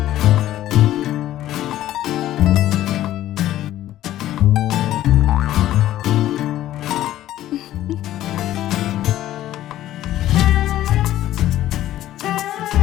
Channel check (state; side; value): quieter; right; 13.5 dB